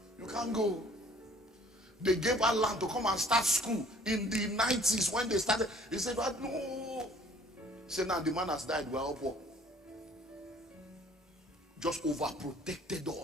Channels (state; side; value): normal; both; correlation 0.56